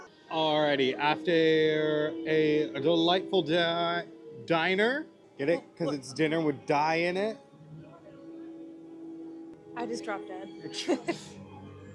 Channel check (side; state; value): both; identical; correlation 1.00